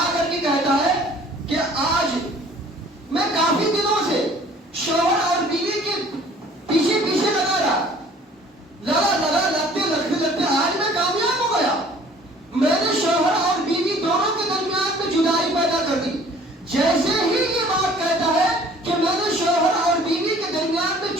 کر کے کہتا ہے کہ آج میں کافی دنوں سے شوہر اور بیوی کے پیچھے پیچھے لگا لگتے آج میں کامیاب ہو گیا. میں نے شوہر اور بیوی دونوں کے درمیان میں جدائی پیدا کر دی. جیسے ہی یہ بات کہتا ہے کہ میں نے شوہر اور بیوی کے درمیان میں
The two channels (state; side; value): normal; both; correlation 0.52